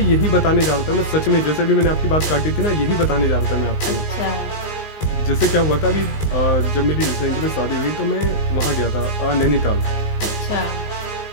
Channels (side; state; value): right; late; 19 ms